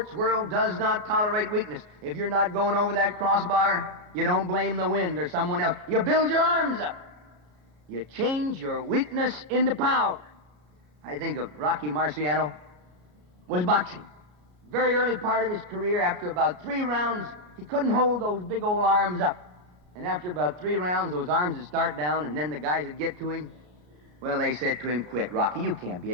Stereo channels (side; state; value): left; late; 33 ms